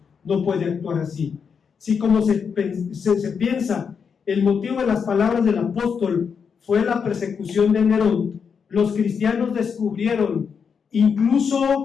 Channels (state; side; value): quieter; right; 6.4 dB